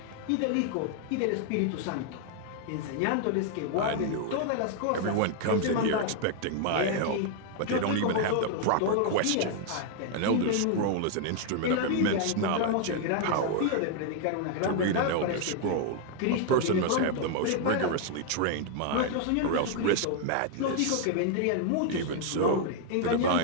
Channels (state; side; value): different; both; correlation 0.00